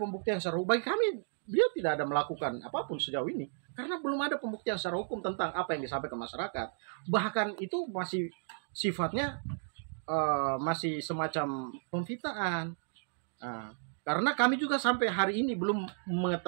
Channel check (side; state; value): left; silent; digital silence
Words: secara hukum. Bagi kami beliau tidak ada melakukan apapun sejauh ini karena belum ada pembuktian secara hukum tentang apa yang disampaikan ke masyarakat. Bahkan itu masih sifatnya masih semacam pemfitnaan. Karena kami juga sampai hari ini belum